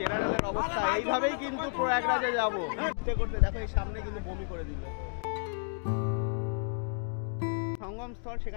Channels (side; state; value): right; silent; 57 dB below the other